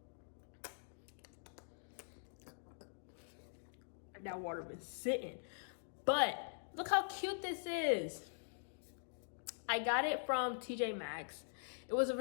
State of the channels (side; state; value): right; silent; digital silence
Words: That water been sitting. But look how cute this is. I got it from TJ Maxx. It was